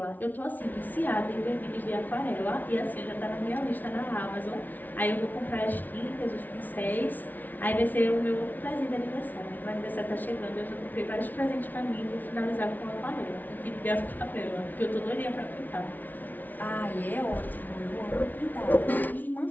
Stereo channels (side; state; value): right; late; 0.082 ms